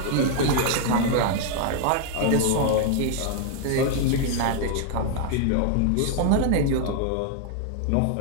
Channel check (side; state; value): both; different; correlation 0.00